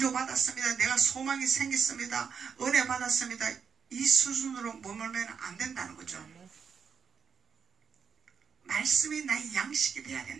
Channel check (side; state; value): left; quieter; 6.6 dB